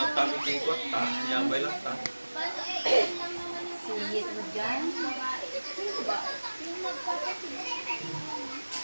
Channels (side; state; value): both; inverted; correlation -1.00